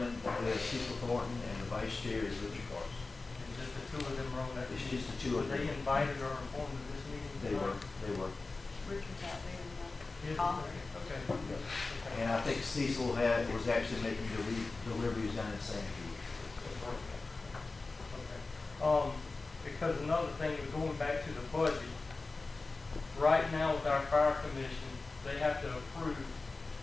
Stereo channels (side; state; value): right; quieter; 3.6 dB